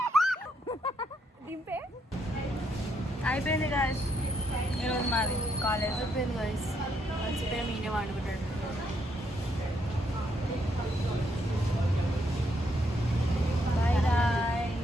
దింపే అయిపోయింది గాయస్ ఈరోజు మాది కాలేజ్. అయిపోయింది గాయస్, మర్చిపోయి మీనే వండుకుంటాడు. Bye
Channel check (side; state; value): both; normal; correlation 0.75